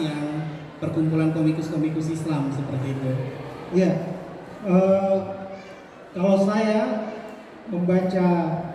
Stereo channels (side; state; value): both; identical; correlation 1.00